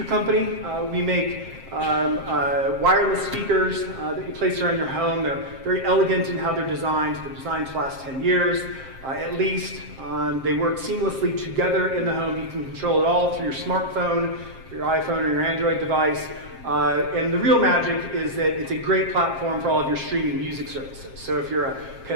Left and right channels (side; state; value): left; late; 7.6 ms